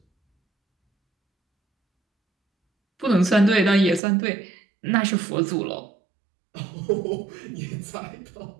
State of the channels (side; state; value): left; drops out; at 4.0 s